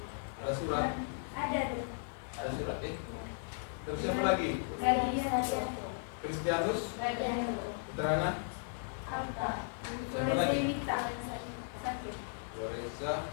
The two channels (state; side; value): silent; right; 54 dB below the other